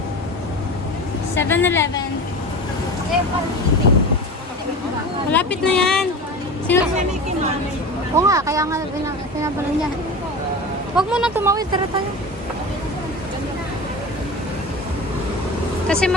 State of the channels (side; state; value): both; normal; correlation 0.31